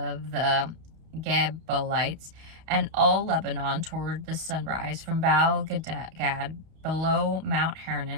the Gebalites, and all Lebanon toward the sunrise, from Baal Gad below Mount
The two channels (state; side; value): late; left; 31 ms